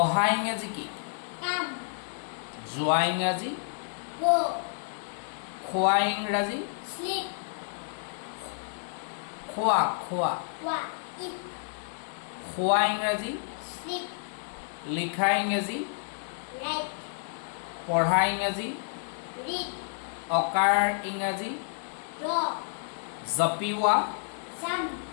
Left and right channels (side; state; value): right; silent; digital silence